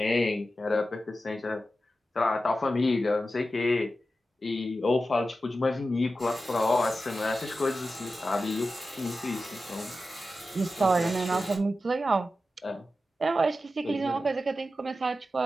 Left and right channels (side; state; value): both; normal; correlation 0.92